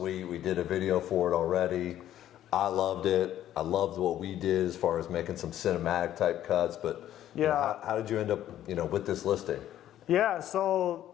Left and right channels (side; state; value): right; quieter; 12.1 dB